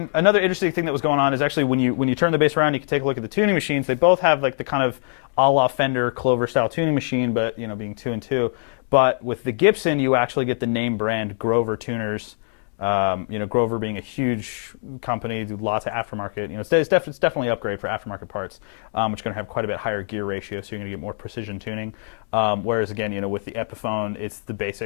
another interesting thing that was going on is actually when you turn the bass around, you can take a look at the tuning machines. They both have like the kind of a la Fender Clover style tuning machine, but being 2 and 2. But with the Gibson, you actually get the name brand Grover tuners. Grover being a huge company, do lots of aftermarket. It's definitely an upgrade for aftermarket parts, which are going to have quite a bit higher gear ratio, so you're going to get more precision tuning. Whereas again, with the Epiphone, it's the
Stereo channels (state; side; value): silent; right; digital silence